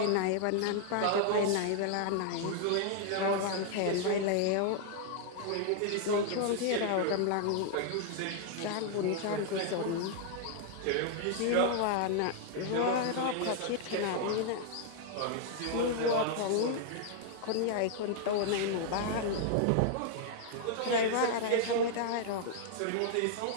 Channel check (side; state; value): both; different; correlation -0.01